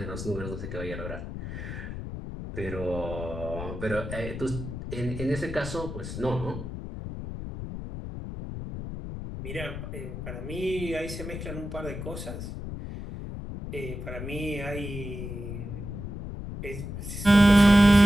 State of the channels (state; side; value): noise; left; rumble, 7 dB below the sound